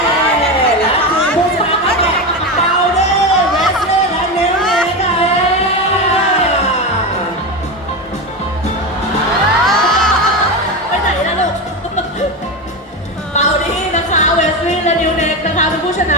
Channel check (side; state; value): both; normal; correlation 0.17